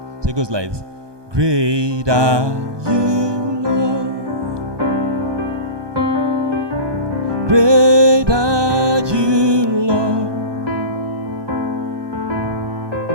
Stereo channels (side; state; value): left; late; 1.2 ms